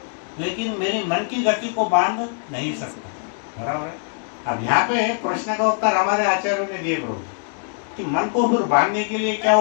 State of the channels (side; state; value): right; silent; 59 dB below the other